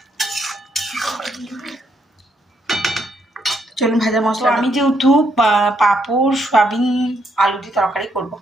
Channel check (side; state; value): both; normal; correlation 0.75